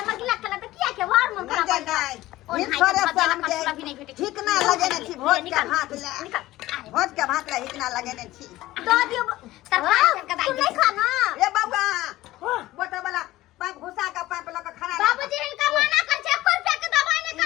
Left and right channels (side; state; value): right; quieter; 16.7 dB